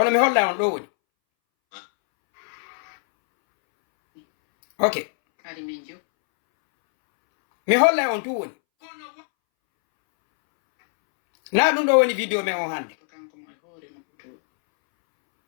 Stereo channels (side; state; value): right; silent; 64 dB below the other